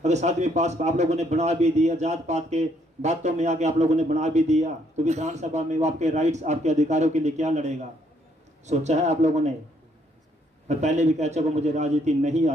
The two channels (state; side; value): normal; both; correlation 0.69